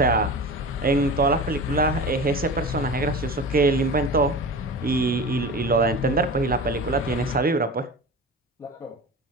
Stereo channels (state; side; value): normal; both; correlation 0.32